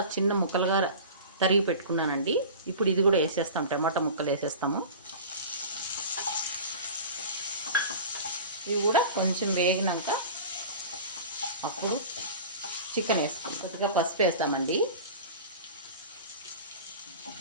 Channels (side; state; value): both; inverted; correlation -0.36